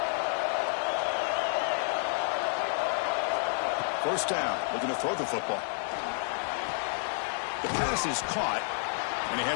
1st down. Looking to throw the football. The pass is caught, and he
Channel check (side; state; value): right; silent; digital silence